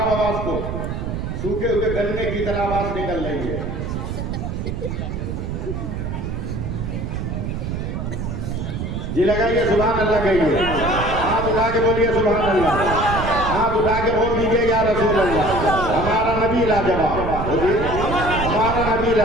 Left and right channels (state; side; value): noise; right; rumble, 4 dB below the sound